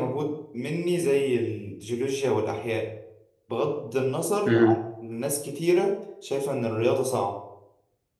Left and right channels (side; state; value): both; identical; correlation 1.00